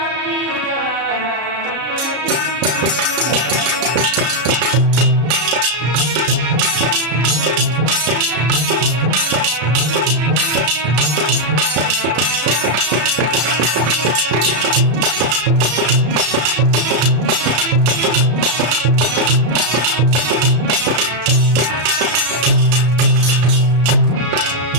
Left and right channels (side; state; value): left; late; 33 ms